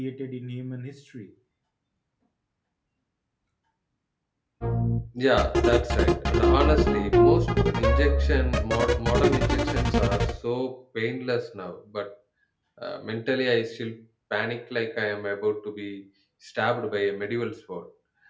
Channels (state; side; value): identical; both; correlation 1.00